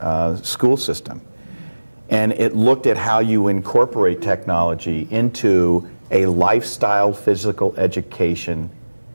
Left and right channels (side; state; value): both; inverted; correlation -1.00